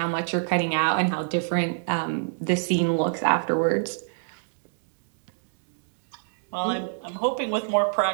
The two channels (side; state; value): left; silent; digital silence